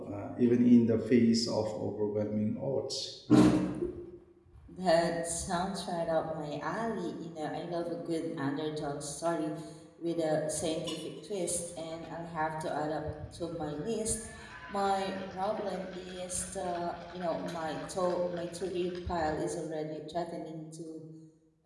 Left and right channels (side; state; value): both; identical; correlation 1.00